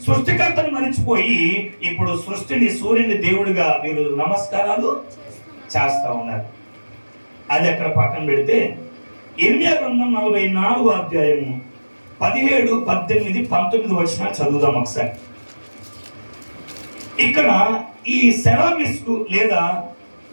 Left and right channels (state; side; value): inverted; both; correlation -1.00